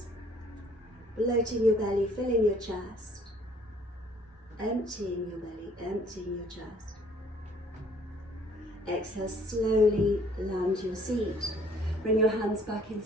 bloating your belly, filling your chest. emptying your belly, emptying your chest. Exhale, slowly land your seat. Bring your hands back in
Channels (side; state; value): both; normal; correlation 0.59